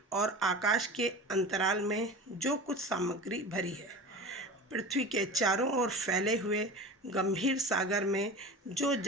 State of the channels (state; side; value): normal; both; correlation 0.33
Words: और आकाश के अंतराल में जो कुछ सामग्री भरी है, पृथ्वी के चारों ओर फैले हुए गंभीर सागर में जो